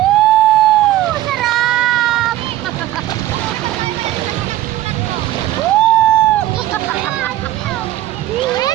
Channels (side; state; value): left; quieter; 14.5 dB